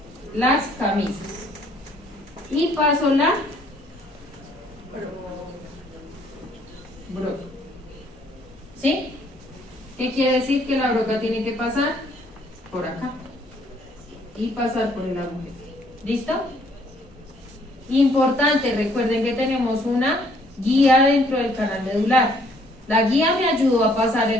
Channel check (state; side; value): normal; both; correlation 0.64